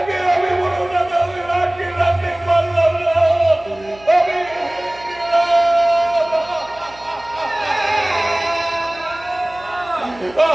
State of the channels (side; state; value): right; noise; hum, 24 dB below the sound